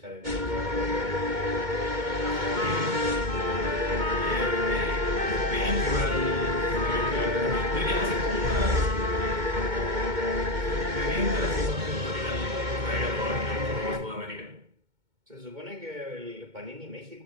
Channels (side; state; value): left; late; 2.2 ms